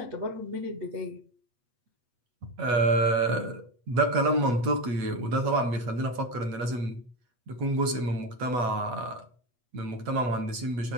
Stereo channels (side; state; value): left; late; 8.3 ms